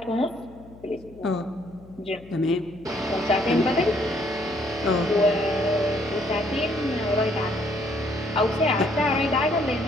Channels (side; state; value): left; noise; hum, 22 dB below the sound